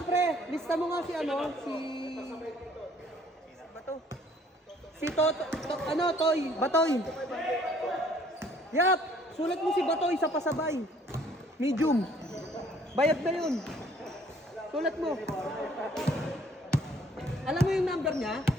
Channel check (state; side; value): normal; both; correlation 0.59